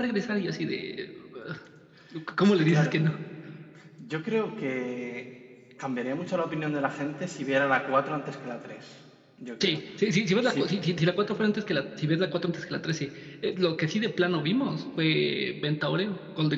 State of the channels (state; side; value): identical; both; correlation 1.00